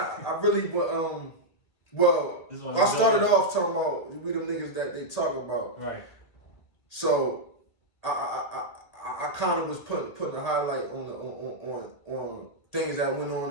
really I started off talking about we them niggas that they talk about. Right. So I kind of was putting a highlight on things that went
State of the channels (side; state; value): right; late; 1.8 ms